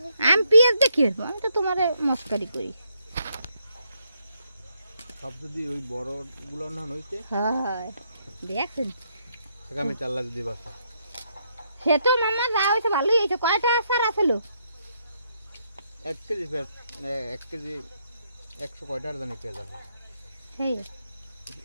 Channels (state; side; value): inverted; both; correlation -0.76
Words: আমি পিঁয়াজ দেখি আমি তো তোমারে মস্কারি করি সব যদি ওই বড় গুলো না হইতে হয় দেখছেন আগামী চাল্লা যদি বাসা সে তো মামা যা হয়েছে ভালোই হয়েছে কয়টা আসার আসলো 1 কেজি পেঁয়াজ 1 কেজি 100 কয়টার জানি পেঁয়াজ আছে সেই